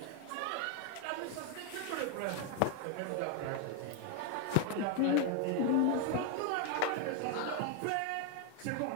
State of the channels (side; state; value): both; different; correlation 0.01